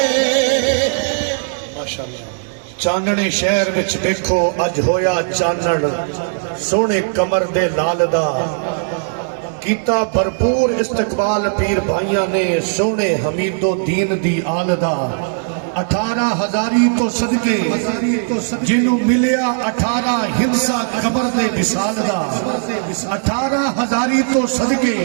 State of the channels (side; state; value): left; silent; 68 dB below the other